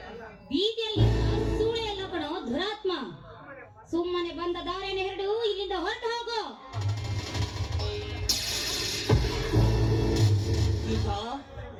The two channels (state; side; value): identical; both; correlation 1.00